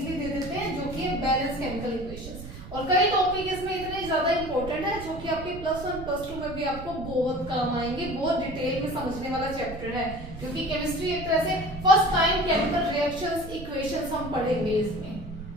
दे देते हैं, जो कि है बैलेंस केमिकल इक्वेशंस। और कई टॉपिक इसमें इतने ज्यादा इंपॉर्टेंट है जो कि आपके +1 +2 में भी आपको बहुत काम आएंगे, बहुत डिटेल में समझने वाला चैप्टर है, क्योंकि केमिस्ट्री एक तरह से first time chemical reactions equations हम पढ़ेंगे इसमें।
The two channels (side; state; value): right; noise; rumble, 12 dB below the sound